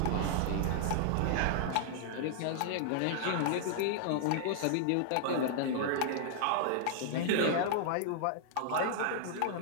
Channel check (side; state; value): both; different; correlation -0.01